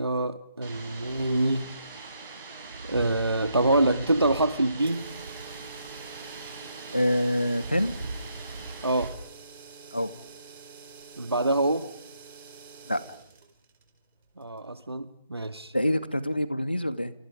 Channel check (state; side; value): inverted; both; correlation -0.77